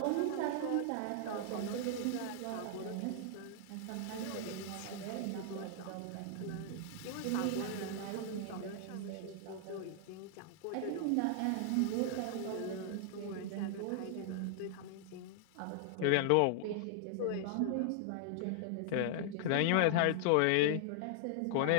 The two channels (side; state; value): both; different; correlation 0.00